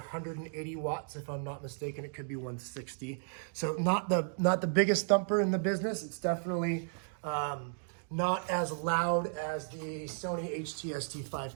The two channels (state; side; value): silent; left; digital silence